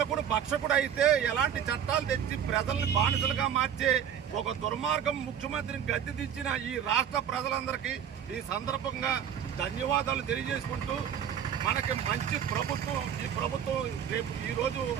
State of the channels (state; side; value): quieter; left; 8.9 dB